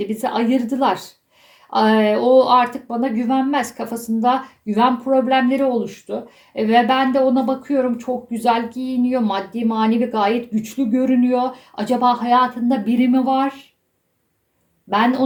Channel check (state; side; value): identical; both; correlation 1.00